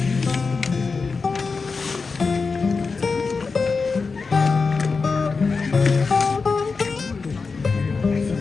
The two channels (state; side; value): quieter; right; 4.6 dB